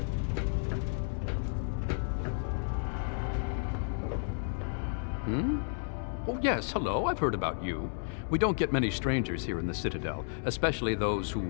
Oh, yes, hello, I've heard about you. We don't get many strangers here in the Citadel, especially those who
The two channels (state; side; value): silent; right; digital silence